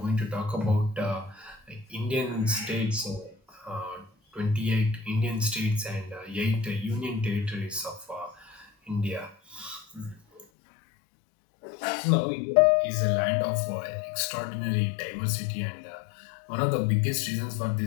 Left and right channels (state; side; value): drops out; right; at 10.5 s